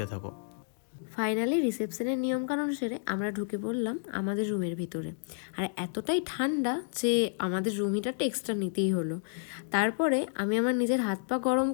থাকো। ফাইনালি রিসেপশনের নিয়মকানুন সেরে আমরা ঢুকে পড়লাম আমাদের রুমের ভিতরে। আর এতটাই ঠান্ডা যে আমাদের রুম হিটারটা এক্সট্রা নিতেই হলো। তারপরে আমি আমার নিজের হাত পা গরম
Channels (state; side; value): silent; right; digital silence